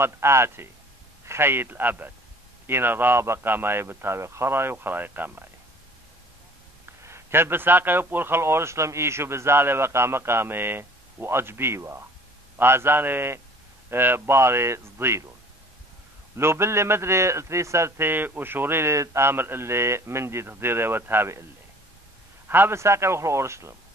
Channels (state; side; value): normal; both; correlation 0.51